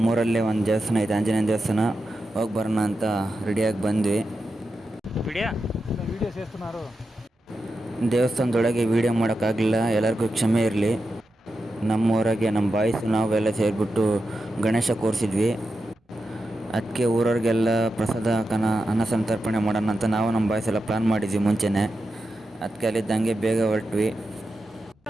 ಒಂದು ದೇವಸ್ಥಾನ ಐತೆ, ಆಂಜನೇಯನ ದೇವಸ್ಥಾನ. ಹೋಗಿ ಬರೋಣ ಅಂತ ರೆಡಿಯಾಗಿ ಬಂದ್ವಿ. ದೇವಸ್ಥಾನದೊಳಗೆ ವೀಡಿಯೋ ಮಾಡೋಕ್ಕಾಗಲಿಲ್ಲ, ಎಲ್ಲರಿಗೂ ಕ್ಷಮೆ ಇರಲಿ. ನಮ್ಮೂರಾಗೆ ನಮ್ಮ ಬಾಯ್ಸು ನಾವೆಲ್ಲ ಸೇರಿಬಿಟ್ಟು ಗಣೇಶ ಕೂರಿಸಿದ್ವಿ. ಅದಕ್ಕೆ ಊರವ್ರಿಗೆಲ್ಲ ಪ್ರಸಾದ ಅನ್ನ ಸಂತರ್ಪಣೆ ಮಾಡೋಣ ಅಂತ ನಾವು ನಮ್ಮ ಬಾಯ್ಸ್ ಎಲ್ಲ ಪ್ಲ್ಯಾನ್ ಮಾಡಿದ್ವಿ ಮುಂಚೆನೇ. ಅದಕ್ಕೆ ಅಲ್ಲಿದ್ದಂಗೆ ಬೇಗ ಹೊರಟ್ವಿ.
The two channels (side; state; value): both; normal; correlation 0.89